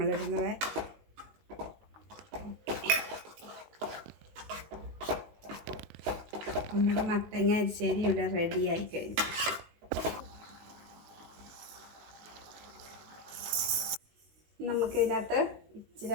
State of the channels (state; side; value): late; left; 19 ms